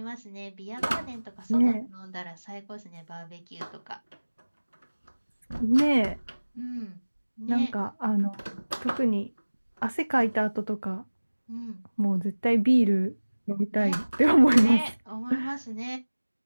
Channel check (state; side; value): inverted; both; correlation -1.00